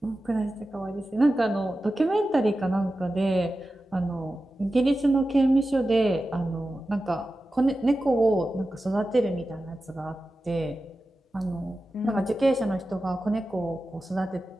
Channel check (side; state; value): both; normal; correlation 0.93